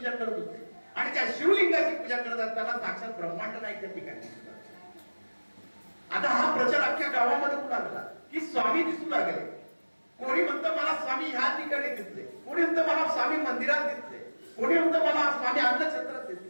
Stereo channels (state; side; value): inverted; both; correlation -1.00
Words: करत होते आणि त्या शिवलिंगाची पूजा करत असताना साक्षात ब्रह्मांड नाही त्या ठिकाणी. आता हा प्रचार अख्ख्या गावामध्ये होऊ लागला की स्वामी दिसू लागले. कोणी म्हणतं मला स्वामी ह्या ठिकाणी दिसले, कोणी म्हणतं मला स्वामी मंदिरात दिसले, कोणी म्हणतं मला स्वामी अन्नछत्रात